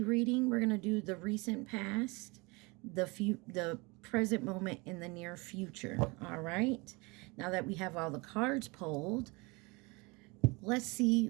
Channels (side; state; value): left; quieter; 26.8 dB